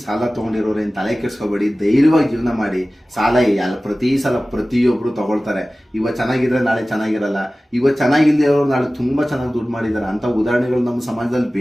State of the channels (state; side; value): normal; both; correlation 0.97